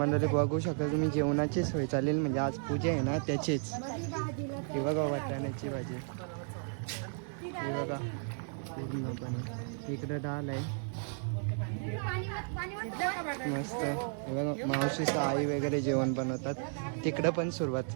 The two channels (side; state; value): left; silent; 55 dB below the other